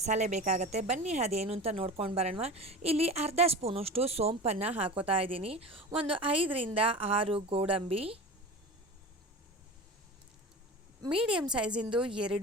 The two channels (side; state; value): both; normal; correlation 0.32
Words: ಬೇಕಾಗುತ್ತೆ. ಬನ್ನಿ ಅದೇನು ಅಂತ ನೋಡ್ಕೊಂಡು ಬರೋಣ. ಇಲ್ಲಿ ಅರ್ಧ ಸ್ಪೂನಷ್ಟು ಸೋಂಪನ್ನು ಹಾಕೋತಾ ಇದ್ದೀನಿ. ಒಂದು 5ರಿಂದ 6 ಗೋಡಂಬಿ, ಮೀಡಿಯಮ್ ಸೈಜಿಂದು